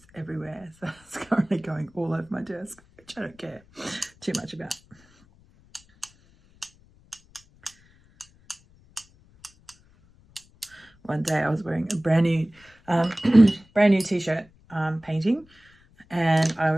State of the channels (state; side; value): noise; left; rumble, 30 dB below the sound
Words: everywhere, so it's currently going all over my desk, which I don't care too much about. One day I was wearing a brand new t-shirt painting, and I